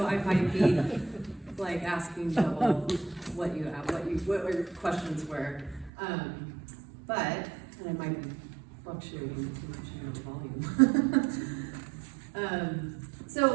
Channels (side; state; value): left; drops out; at 5.9 s